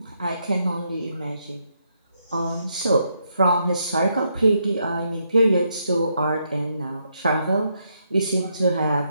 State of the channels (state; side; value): inverted; both; correlation -0.78